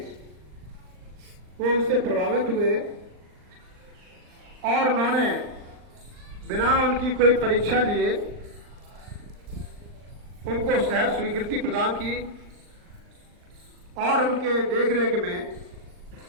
वो उनसे प्रभावित हुए, और उन्होंने बिना उनकी कोई परीक्षा लिए उनको सहर्ष स्वीकृति प्रदान की, और उनके देखरेख में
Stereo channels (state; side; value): late; left; 39 ms